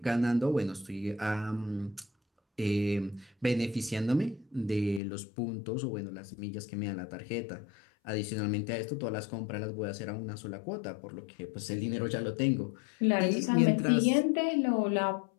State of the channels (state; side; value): drops out; right; at 5.0 s